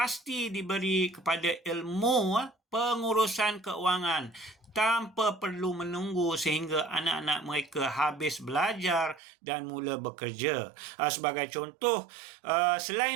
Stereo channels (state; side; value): drops out; left; at 9.2 s